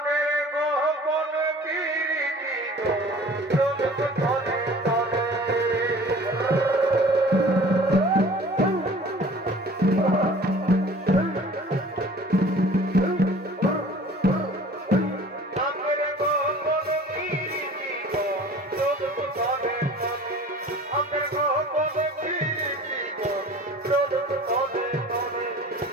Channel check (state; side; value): normal; both; correlation 0.46